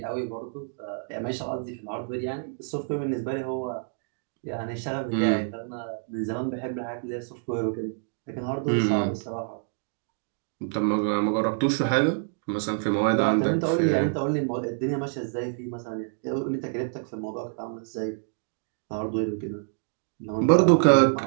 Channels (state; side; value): silent; left; digital silence